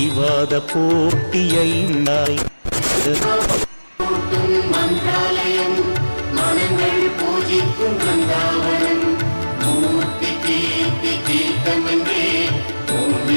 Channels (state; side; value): inverted; both; correlation -1.00